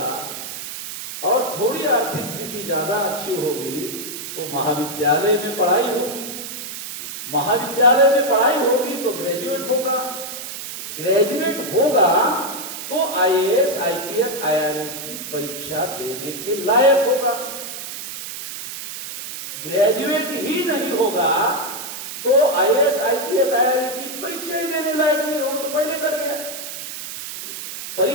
और थोड़ी आर्थिक स्थिति ज्यादा अच्छी होगी तो महाविद्यालय में पढ़ाई होगी। महाविद्यालय में पढ़ाई होगी तो ग्रेजुएट होगा तो आईएएस, आईपीएस, आईआरएस की परीक्षा देने के लायक होगा। ग्रेजुएट ही नहीं होगा तो आईएएस, आईपीएस, आईआरएस की परीक्षा ही देने लायक नहीं होगा, तो पहले कर गया।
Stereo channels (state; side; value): noise; right; hiss, 8 dB below the sound